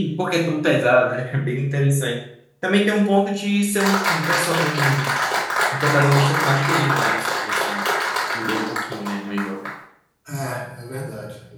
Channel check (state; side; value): identical; both; correlation 1.00